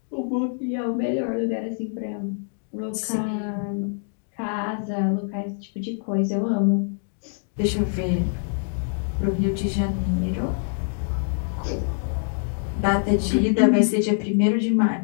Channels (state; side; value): silent; right; 62 dB below the other